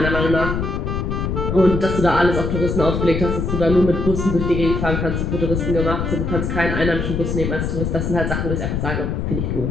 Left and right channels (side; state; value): left; noise; rumble, 1 dB below the sound